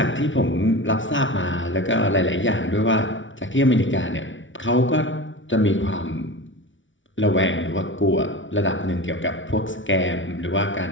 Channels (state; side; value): late; right; 0.56 ms